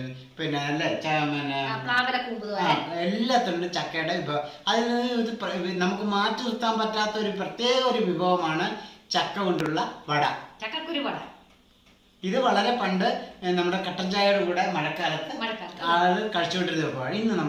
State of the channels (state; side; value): identical; both; correlation 1.00